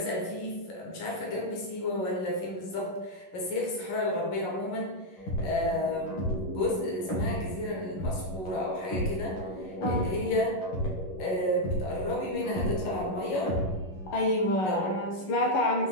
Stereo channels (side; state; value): right; late; 11 ms